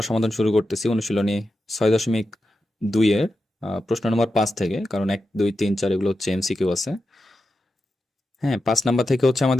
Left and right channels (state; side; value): normal; both; correlation 0.90